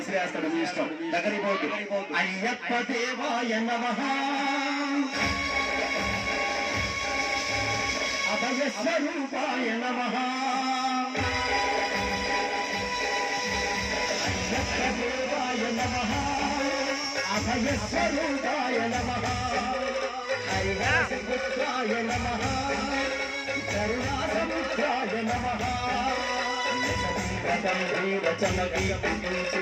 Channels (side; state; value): both; identical; correlation 1.00